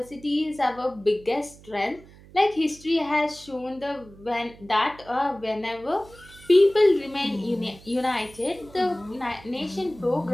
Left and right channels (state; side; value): noise; right; hum, 22 dB below the sound